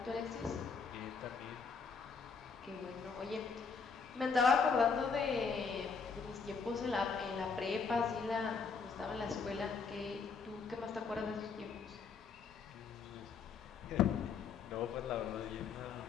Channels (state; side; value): quieter; right; 5.4 dB